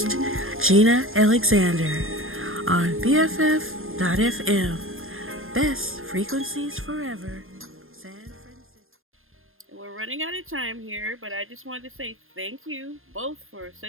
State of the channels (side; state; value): left; late; 0.60 ms